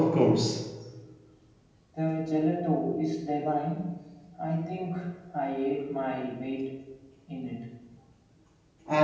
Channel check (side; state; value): both; identical; correlation 1.00